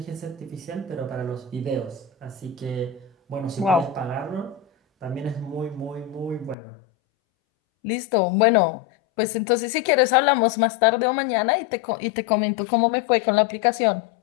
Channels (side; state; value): right; drops out; at 6.6 s